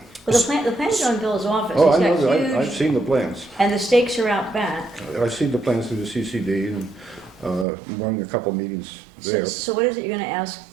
Well, the plan's on Bill's office. Oh, I He's know, got I've huge, seen the plans. and the stakes are out back. I've seen the plans through the CCD, and run a couple meetings there. So what is it you're going to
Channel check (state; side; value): drops out; left; at 7.7 s